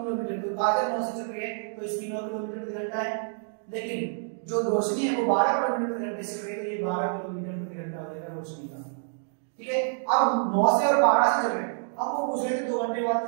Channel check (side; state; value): left; silent; 60 dB below the other